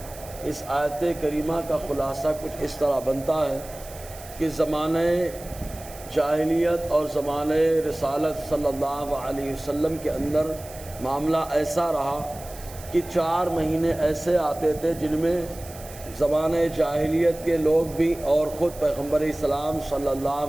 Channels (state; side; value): noise; right; hiss, 17 dB below the sound